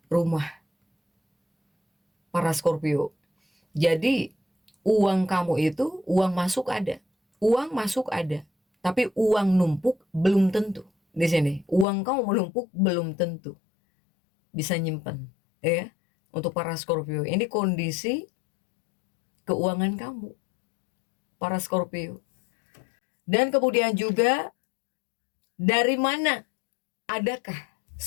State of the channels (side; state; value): right; drops out; at 11.9 s